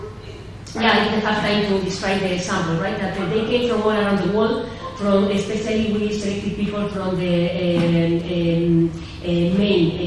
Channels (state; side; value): identical; both; correlation 1.00